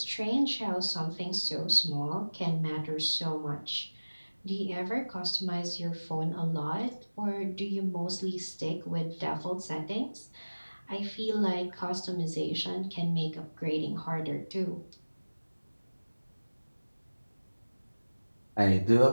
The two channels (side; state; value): both; inverted; correlation -1.00